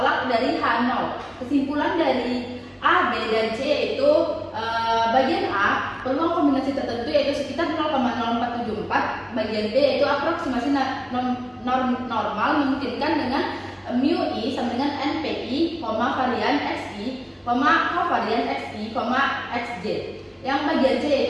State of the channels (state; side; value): identical; both; correlation 1.00